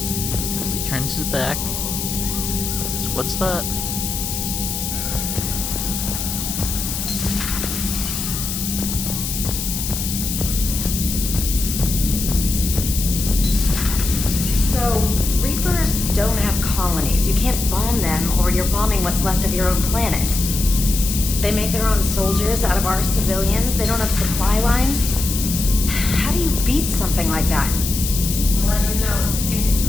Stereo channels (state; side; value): noise; left; hiss, 4 dB below the sound